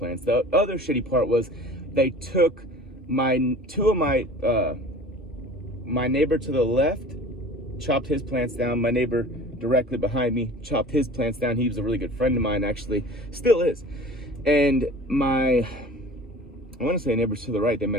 The other shitty part was they took my neighbor to the left, chopped his plants down. My neighbor directly behind me chopped his plants down. He was a really good friend of mine, actually, still is. And I want to say neighbors to the right, they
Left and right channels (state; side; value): normal; both; correlation 0.43